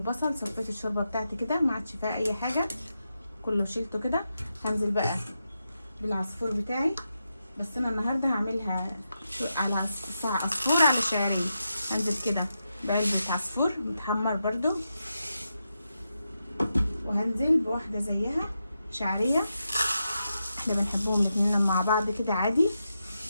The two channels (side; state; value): both; inverted; correlation -0.87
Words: صفيت الشوربه بتاعتي كده ما عادش فيها اي حاجه، كله شيلته كده. هنزل بقى بالعصفور بتاعي، بس انا النهارده هعملها على عصفور على شعرين. هنزل كده بعلبه عصفور متحمر برضو، وهنزل بواحده زيها شعريه، احنا بنحبهم الاتنين مع بعض كده عادي.